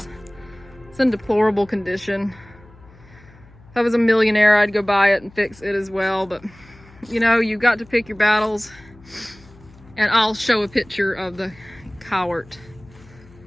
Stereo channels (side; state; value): left; noise; hum, 24 dB below the sound